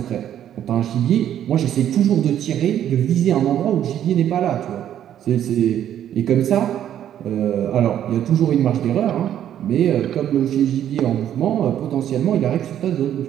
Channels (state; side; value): quieter; left; 10.7 dB